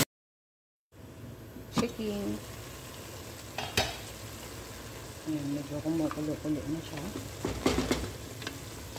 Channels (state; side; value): identical; both; correlation 1.00